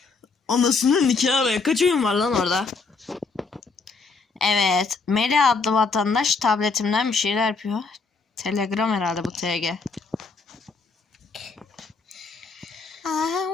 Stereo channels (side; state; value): right; quieter; 4.3 dB